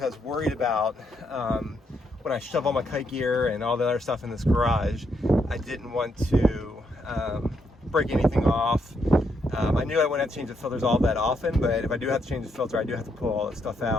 I was worried about when I shove all my kite gear and all the other stuff in this garage, I didn't want to break anything off. I knew I wouldn't have to change the filters all that often, but if I do have to change the filter, I do have to pull all that stuff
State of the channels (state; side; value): normal; both; correlation 0.77